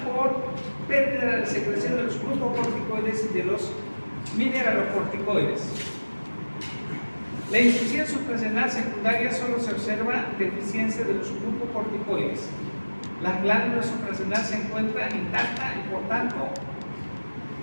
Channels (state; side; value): inverted; both; correlation -1.00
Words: por pérdida de la secreción de los glucocorticoides y de los mineralocorticoides. La insuficiencia suprarrenal secundaria solo se observa deficiencia de los glucocorticoides. La glándula suprarrenal se encuentra intacta y por tanto